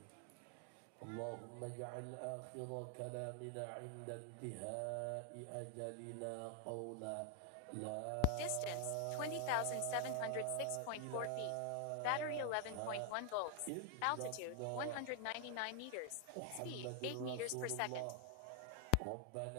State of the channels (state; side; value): different; both; correlation 0.00